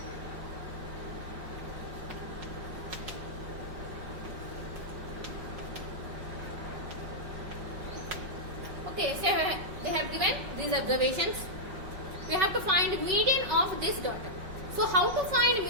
Okay, so they have given these observations. We have to find median of this data. So how to find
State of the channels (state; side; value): late; left; 5.3 ms